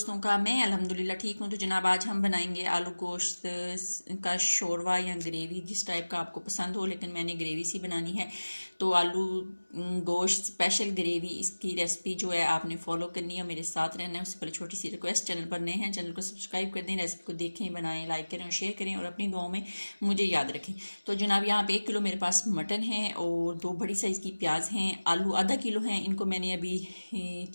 का। मैं अल्हम्दुलिल्लाह ठीक हूँ। तो जनाब आज हम बनाएंगे आलू गोश्त का शोरवा या ग्रेवी, जिस टाइप का आपको पसंद हो, लेकिन मैंने ग्रेवी सी बनानी है। तो आलू गोश्त स्पेशल ग्रेवी, इसकी रेसिपी जो है आपने फॉलो करनी है, मेरे साथ रहना है। उससे पहले छोटी सी रिक्वेस्ट, चैनल पर नए हैं चैनल को सब्सक्राइब कर दें, रेसिपी को देखें, बनाएं, लाइक करें और शेयर करें और अपनी दुआओं में मुझे याद रखें। तो जनाब यहाँ पे 1 किलो मेरे पास मटन है और 2 बड़ी साइज़ की प्याज हैं। आलू आधा किलो हैं, इनको मैंने अभी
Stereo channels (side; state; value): both; inverted; correlation -1.00